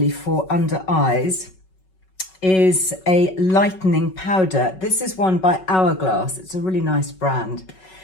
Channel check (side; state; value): right; late; 5.3 ms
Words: for under eyes, is a lightening powder. This is one by Hourglass. It's a really nice brand,